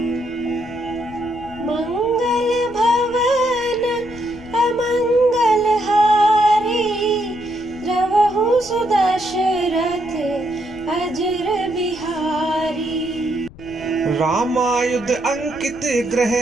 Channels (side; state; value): left; noise; rumble, 20 dB below the sound